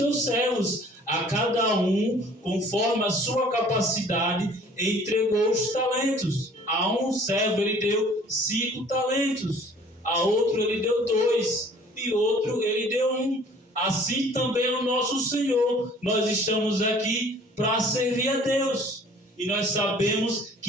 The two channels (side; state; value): both; normal; correlation 0.52